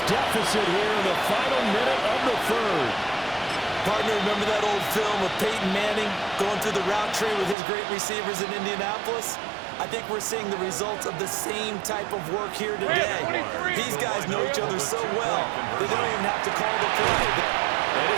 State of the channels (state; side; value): drops out; left; at 7.6 s